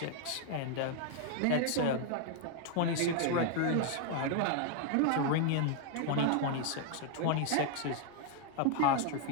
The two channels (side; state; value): both; different; correlation 0.00